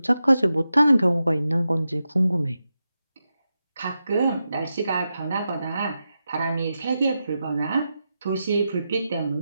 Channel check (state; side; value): inverted; both; correlation -0.89